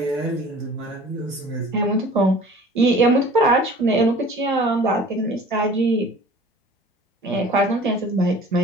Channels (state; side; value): normal; both; correlation 0.46